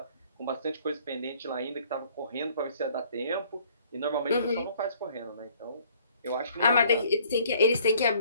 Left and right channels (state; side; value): inverted; both; correlation -0.59